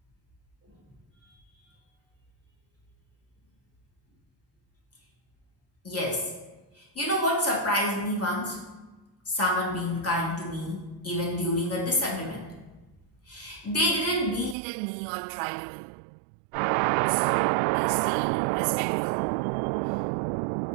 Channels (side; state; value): left; drops out; at 14.6 s